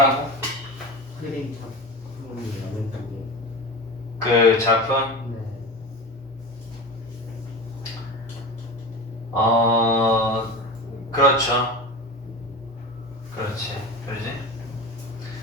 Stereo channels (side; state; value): both; normal; correlation 0.29